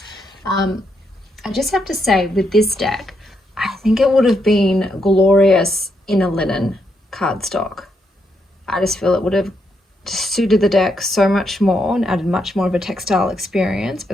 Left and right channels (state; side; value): normal; both; correlation 0.79